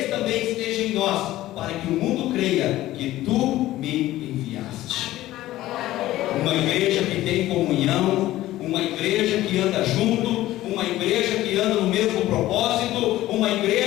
também estejam em nós, para que o mundo creia que tu me enviaste. Uma igreja que tem comunhão, uma igreja que anda junto, uma igreja que anda no mesmo propósito, uma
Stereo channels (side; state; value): right; quieter; 15.5 dB